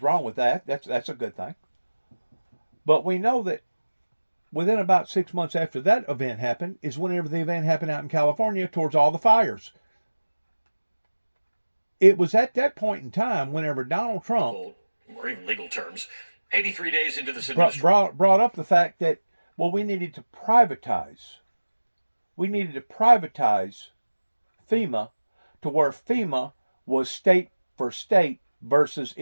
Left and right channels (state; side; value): inverted; both; correlation -1.00